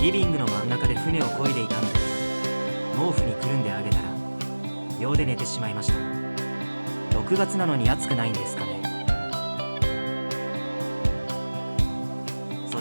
リビングの真ん中で船を漕いでいたので、毛布にくるんであげたら秒で寝てしまいました。6月なのに暑くないんですかね。そ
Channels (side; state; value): both; inverted; correlation -1.00